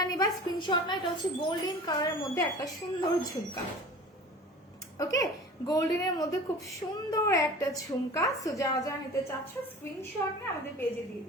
নিবা স্ক্রিনশট না, এটা হচ্ছে গোল্ডেন কালারের মধ্যে একটা সুন্দর ঝুমকা, ওকে, গোল্ডেনের মধ্যে খুব সুন্দর একটা ঝুমকা। সো যারা যারা নিতে চাচ্ছ স্ক্রিনশট নিয়ে আমাদের পেজে দিয়ে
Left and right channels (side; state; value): both; normal; correlation 0.40